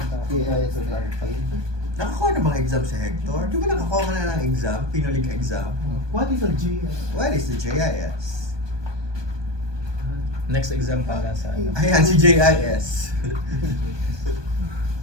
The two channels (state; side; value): late; left; 1.2 ms